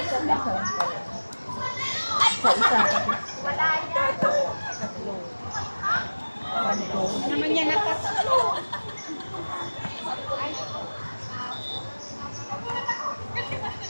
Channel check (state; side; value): inverted; both; correlation -1.00